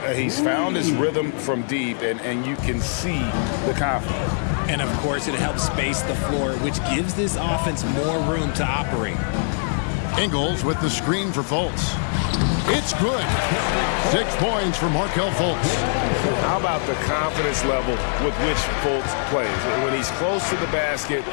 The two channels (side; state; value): right; silent; 59 dB below the other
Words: He's found his rhythm from deep, and you can see the confidence. And, of course, it helps space the floor, which gives this offense more room to operate. Ingles with the screen for Fultz. It's good. 6 points for Markelle Fultz. How about the confidence level with which Fultz plays? When he's close to the basket,